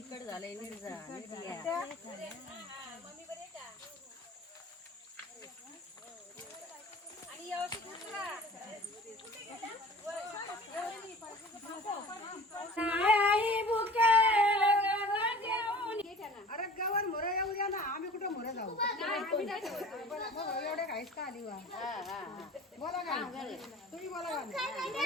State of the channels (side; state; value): both; normal; correlation 0.44